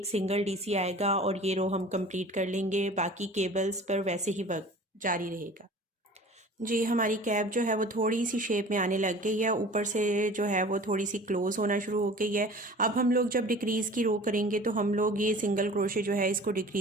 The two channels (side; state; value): both; normal; correlation 0.43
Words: सिंगल डीसी आएगा, और ये रो हम कंप्लीट कर लेंगे। बाकी केबल्स पर वैसे ही वर्क जारी रहेगा। जी, हमारी कैप जो है वो थोड़ी सी शेप में आने लग गई है, ऊपर से जो है वो थोड़ी सी क्लोज होना शुरू हो गई है। अब हम लोग जब डिक्रीज़ की रो करेंगे तो हम लोग ये सिंगल क्रोशे जो है इसको